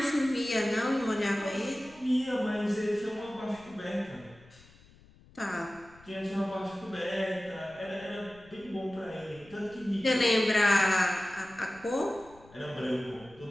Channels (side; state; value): left; noise; rumble, 25 dB below the sound